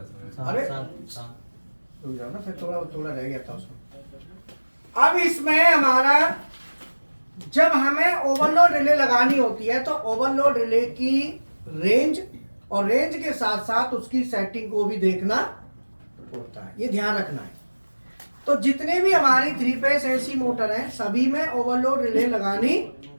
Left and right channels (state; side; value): inverted; both; correlation -1.00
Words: अरे रुक जाओ ना, फिर थोड़ा थोड़ा रह गया था उसमें। अब इसमें हमारा, जब हमें ओवरलोड रिले लगानी होती है तो ओवरलोड रिले की रेंज, और रेंज के साथ साथ उसकी सेटिंग को भी देखना होता है, ये ध्यान रखना है। तो जितने भी हमारी 3 फेस एसी मोटर हैं, सभी में ओवरलोड रिले लगानी